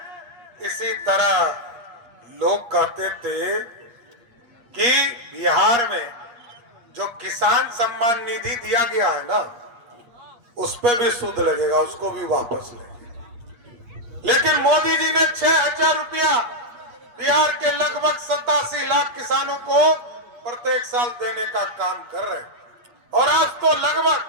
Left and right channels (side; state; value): left; late; 8.5 ms